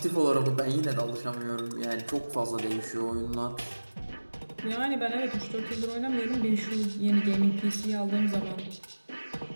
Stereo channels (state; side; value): inverted; both; correlation -1.00